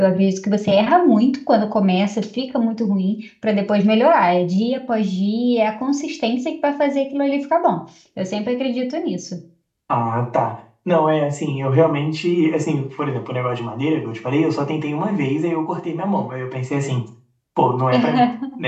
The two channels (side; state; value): both; identical; correlation 1.00